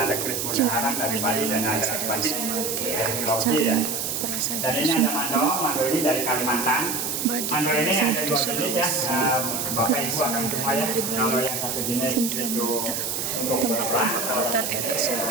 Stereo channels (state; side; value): noise; right; hiss, 2 dB below the sound